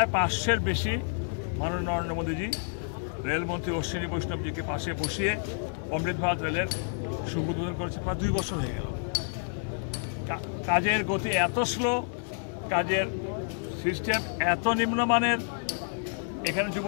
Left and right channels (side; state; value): right; silent; digital silence